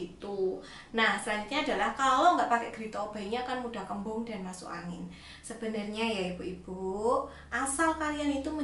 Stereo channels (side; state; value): both; identical; correlation 1.00